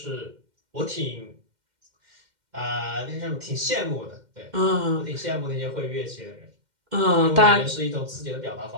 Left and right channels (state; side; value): late; left; 2.1 ms